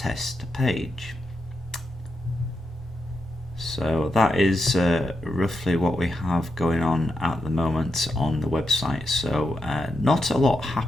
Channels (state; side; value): normal; both; correlation 0.85